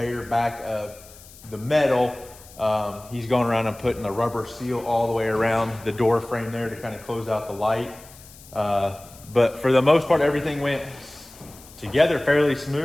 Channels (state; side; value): noise; left; hiss, 21 dB below the sound